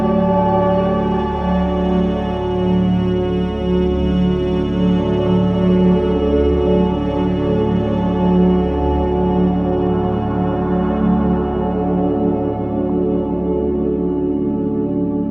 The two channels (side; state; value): left; noise; rumble, 30 dB below the sound